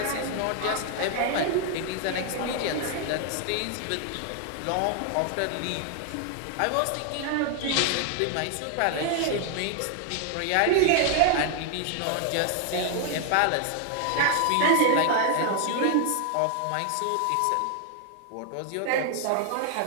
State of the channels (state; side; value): different; both; correlation 0.00